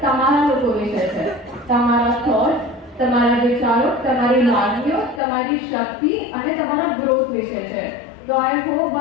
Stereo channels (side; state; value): right; drops out; at 5.2 s